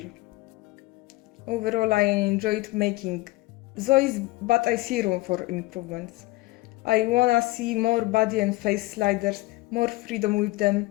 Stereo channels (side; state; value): right; quieter; 20.0 dB